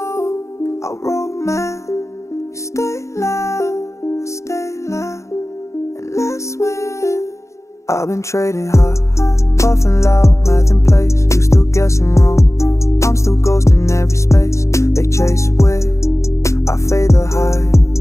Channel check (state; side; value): late; right; 0.14 ms